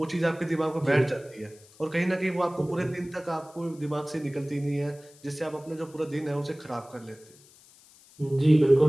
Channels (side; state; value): left; noise; hiss, 25 dB below the sound